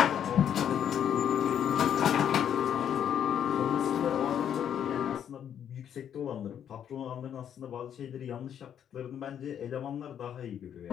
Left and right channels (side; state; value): right; quieter; 9.2 dB